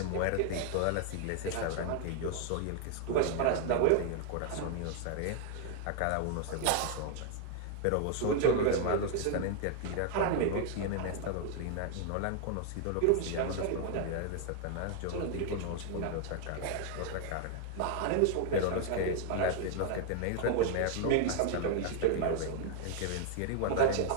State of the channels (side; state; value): both; different; correlation 0.00